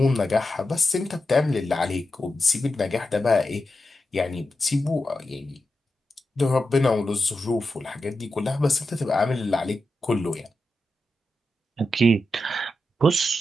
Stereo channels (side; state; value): both; normal; correlation 0.89